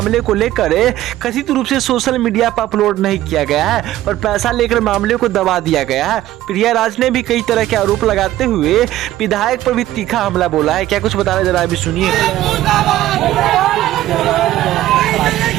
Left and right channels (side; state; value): left; quieter; 14.4 dB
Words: को लेकर कथित रूप से सोशल मीडिया पर अपलोड नहीं किया गया है और पैसा लेकर मामले को दबा दिया गया है। प्रिया राज ने भी कई तरह के आरोप लगाते हुए विधायक पर भी तीखा हमला बोला है। क्या कुछ बता रहे जरा अभी सुनिए।